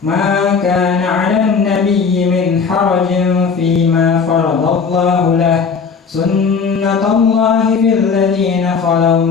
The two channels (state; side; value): quieter; right; 5.6 dB